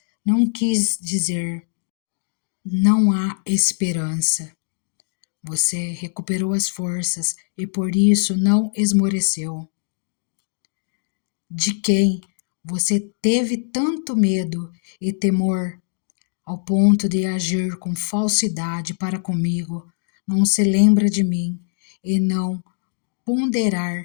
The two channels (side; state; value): right; silent; digital silence